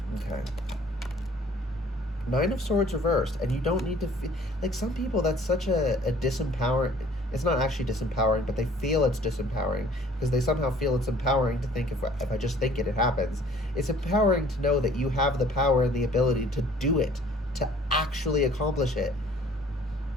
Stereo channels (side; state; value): both; normal; correlation 0.54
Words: Okay. 9 of Swords reversed, and you don't need to feel like some people. That's such a disempowering. It's not actually disempowering, but they feel it's disempowering because they somehow feel it's empowering to think if I just think it happens. It's empowering to know that you have the power and the ability to do it, to actually accomplish it.